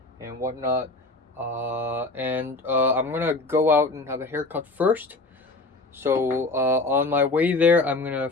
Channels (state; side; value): quieter; right; 3.2 dB